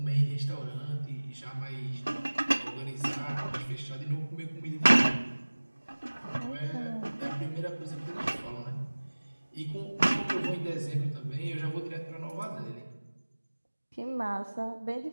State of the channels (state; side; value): inverted; both; correlation -1.00